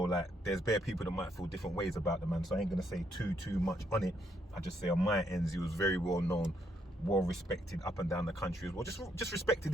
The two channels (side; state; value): both; normal; correlation 0.74